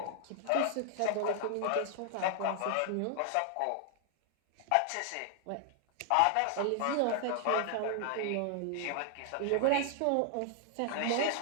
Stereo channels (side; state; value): both; different; correlation 0.00